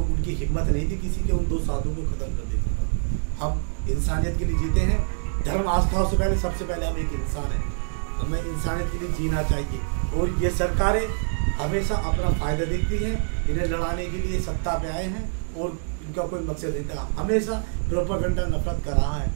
हिम्मत नहीं थी किसी के उन 2 साधुओं को खत्म कर देता था। हम इंसानियत के लिए जीते हैं, धर्म आस्थाओं से पहले सबसे पहले हम एक इंसान है, हमें इंसानियत के लिए जीना चाहिए। और ये सरकारें हमेशा अपना फायदा देखती हैं, इन्हें लड़ाने के लिए सत्ता पे आए हैं और इनका कोई मकसद नहीं था। हमेशा प्रोपेगेंडा नफरत कर रहा है।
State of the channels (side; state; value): left; silent; digital silence